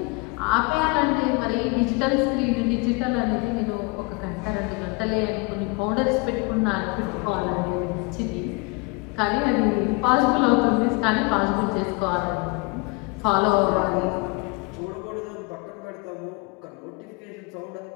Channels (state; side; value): quieter; right; 28.8 dB